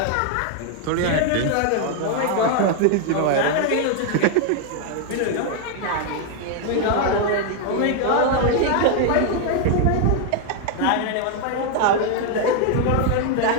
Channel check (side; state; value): both; different; correlation 0.00